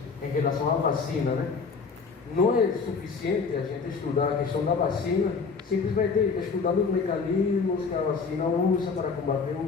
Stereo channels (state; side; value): quieter; right; 5.0 dB